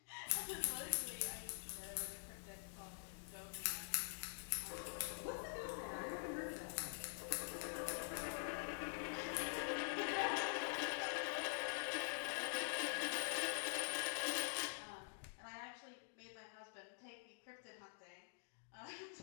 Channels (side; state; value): right; silent; digital silence